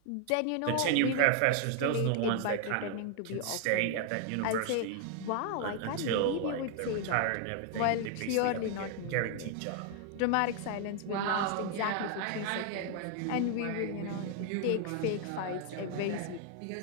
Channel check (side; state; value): both; different; correlation 0.00